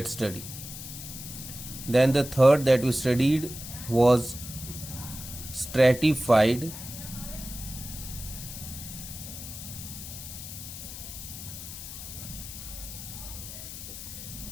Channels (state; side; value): noise; left; hiss, 10 dB below the sound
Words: study. Then the third that we studied was stratified